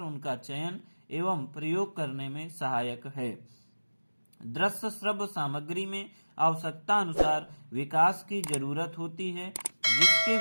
उनका चयन एवं प्रयोग करने में सहायक है। दृश्य श्रव्य सामग्री में आवश्यकता अनुसार विकास की जरूरत होती है, जिसके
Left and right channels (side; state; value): both; inverted; correlation -1.00